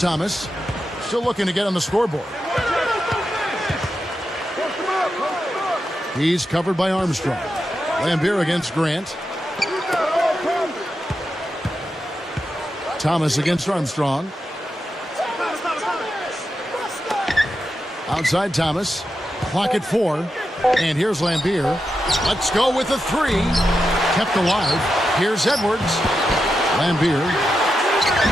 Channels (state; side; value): normal; both; correlation 0.88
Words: still looking to get on the scoreboard. He's covered by Armstrong. Lambier against Grant. Thomas against Armstrong. Outside Thomas. Clock at 4. And here's Lambier. Let's go with a three. Kept alive. Here's Edwards. Lambier.